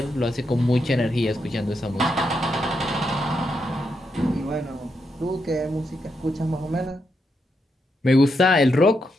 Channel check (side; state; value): both; normal; correlation 0.82